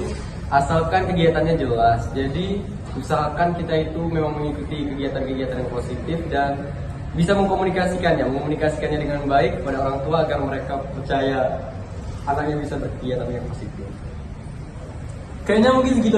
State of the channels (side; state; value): both; identical; correlation 1.00